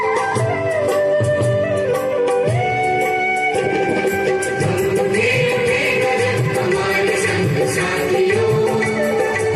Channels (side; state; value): both; identical; correlation 1.00